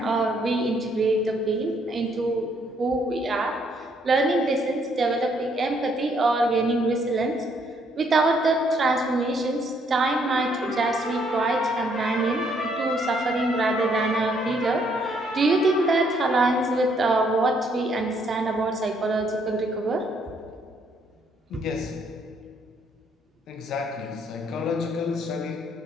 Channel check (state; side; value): normal; both; correlation 0.69